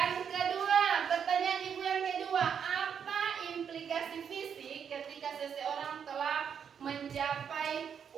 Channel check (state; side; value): quieter; left; 7.6 dB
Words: kedua, pertanyaan Ibu yang kedua, apa implikasi fisik ketika seseorang telah mencapai